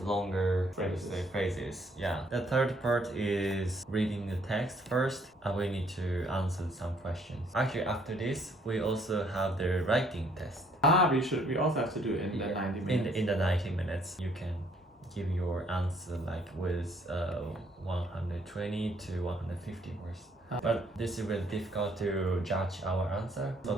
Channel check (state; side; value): normal; both; correlation 0.65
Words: longer Phrases. phrases. Yeah. The third part is reading the text first, and we need to answer some questions. Actually, after this, we also have the writing test. We also have to do it in the 90 minutes. In the 90 minutes, you can give your answer like with 120 to 150 words. But this is really difficult to judge our answer. So